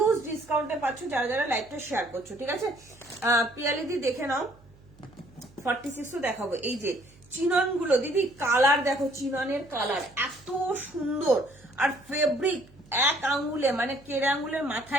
ডিসকাউন্টে পাচ্ছ যারা যারা লাইভটা শেয়ার করছো, ঠিক আছে? পিয়ালিদি দেখে নাও, 46 দেখাবো। এই যে চিনন গুলো দিদি, কালার দেখো, চিননের কালার এত সুন্দর, আর ফেব্রিক এক আঙ্গুলে মানে কেড়ে আঙ্গুলের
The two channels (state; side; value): noise; right; hum, 26 dB below the sound